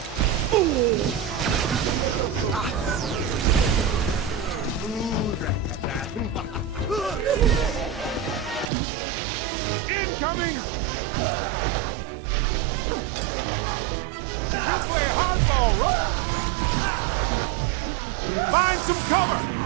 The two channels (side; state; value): left; drops out; at 8.7 s